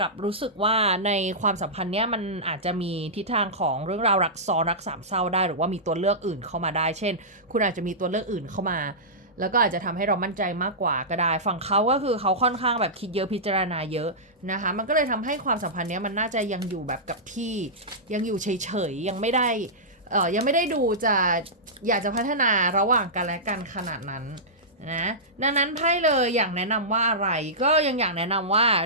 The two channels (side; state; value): both; normal; correlation -0.15